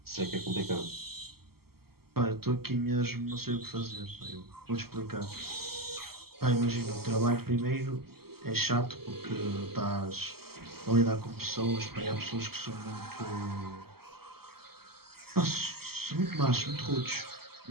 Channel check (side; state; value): left; late; 0.95 ms